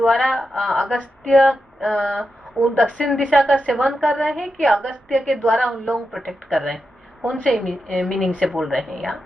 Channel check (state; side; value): normal; both; correlation 0.88